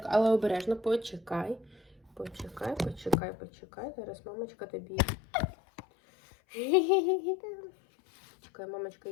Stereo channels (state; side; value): drops out; right; at 3.2 s